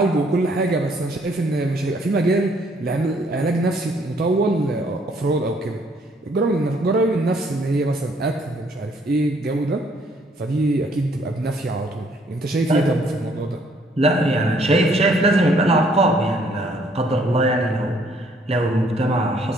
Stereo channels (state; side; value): normal; both; correlation 0.65